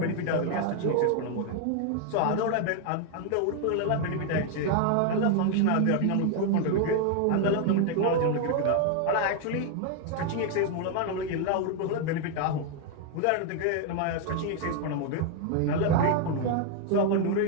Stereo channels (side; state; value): both; different; correlation 0.00